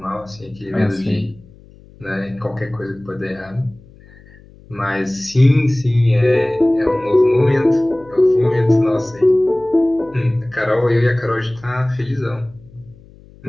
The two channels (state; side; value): noise; left; hum, 24 dB below the sound